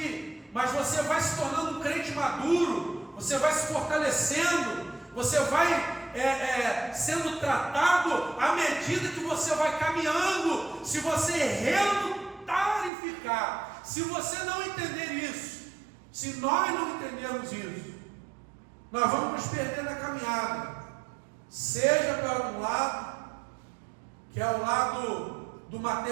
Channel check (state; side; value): drops out; left; at 12.9 s